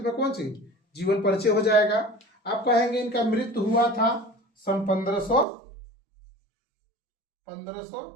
कौन सी जीवन परिचय हो जाएगा। आप कहेंगे इनका मृत्यु हुआ था सन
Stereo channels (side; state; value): left; drops out; at 5.5 s